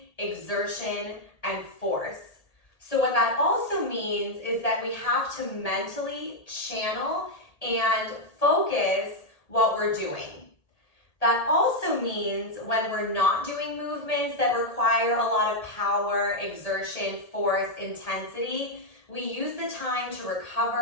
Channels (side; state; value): right; late; 1.8 ms